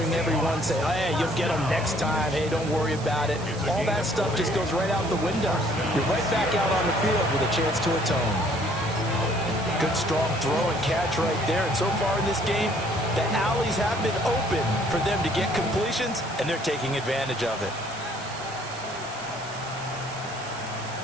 everyone say, hey, you'll get them next time. Hey, don't worry about it. All that stuff just goes right out the window. You're right back out on the field with a chance to atone. Good, strong throw and catch right there. And so far in this game, the alleys have been open for them to get completions, and they're taking advantage of it.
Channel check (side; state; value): right; noise; hiss, 16 dB below the sound